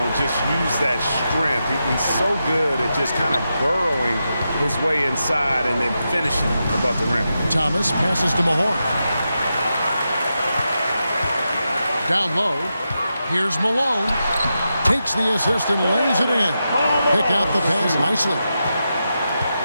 just use that strength. He's so good at just kind of burrowing his way inside and then finishing above the rim. Thomas passes to Mahorn. Down low. Here's Malone. Takes the assist and lays it in. Picked out the pass nicely.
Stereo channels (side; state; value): both; inverted; correlation -0.88